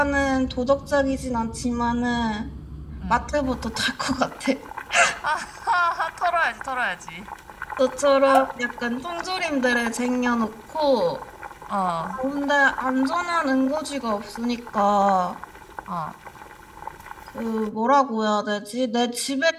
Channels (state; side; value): identical; both; correlation 1.00